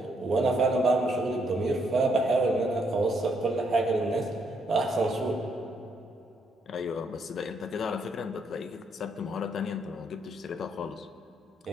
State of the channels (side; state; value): both; normal; correlation 0.74